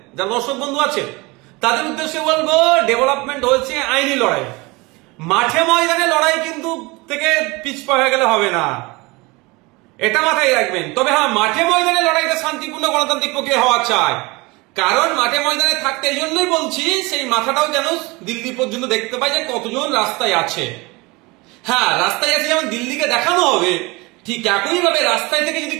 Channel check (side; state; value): left; quieter; 24.6 dB